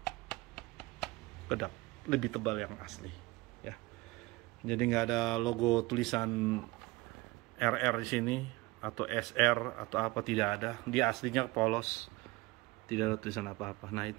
kedap, lebih tebal yang asli ya. Jadi nggak ada logo tulisan RR di sini atau SR atau apa, tidak ada. Dia aslinya polos, tidak ada tulisan apa-apa. Nah,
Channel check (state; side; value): quieter; left; 21.9 dB